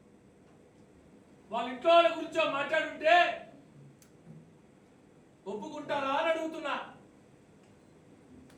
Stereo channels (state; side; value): identical; both; correlation 1.00